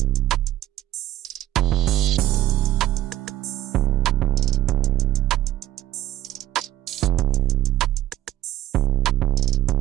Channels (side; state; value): left; quieter; 14.1 dB